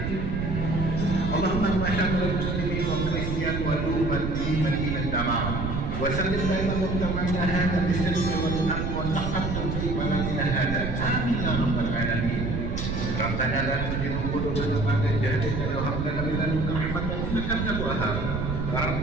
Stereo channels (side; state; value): right; noise; rumble, 2 dB below the sound